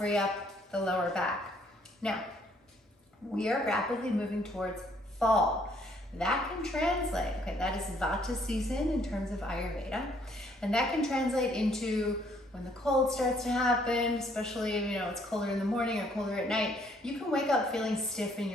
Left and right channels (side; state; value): both; normal; correlation 0.65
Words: up the lower back. Now, we are rapidly moving towards fall. That can translate, okay, that is Vata season in terms of Ayurveda, and that can translate into when the cold starts to happen, especially if it's colder in the morning or colder at night, you can wake up feeling stiff in